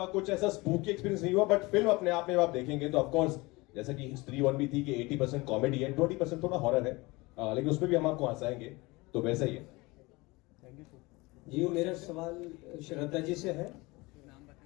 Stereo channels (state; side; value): quieter; right; 23.3 dB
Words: कुछ ऐसा स्पूकी एक्सपीरियंस नहीं हुआ, बट फिल्म अपने आप में आप देखेंगे तो ऑफकोर्स जैसा कि स्त्री 1 भी थी कि 80% कॉमेडी है, 20% थोड़ा हॉरर है, लेकिन उसमें भी हम आपको हंसाएंगे, तो वैसा ही है। जी, मेरा सवाल श्रद्धा जी से है।